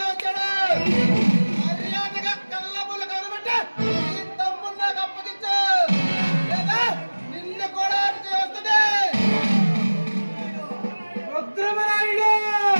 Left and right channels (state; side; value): inverted; both; correlation -1.00